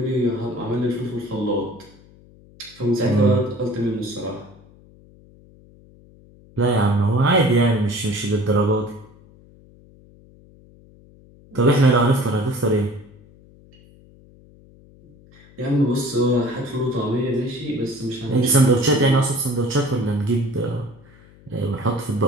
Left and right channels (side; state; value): left; noise; hum, 26 dB below the sound